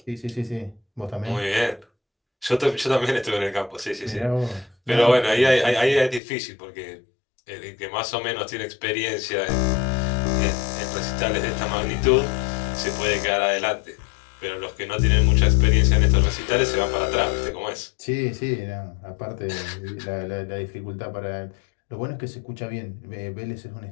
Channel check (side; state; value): right; drops out; at 6.2 s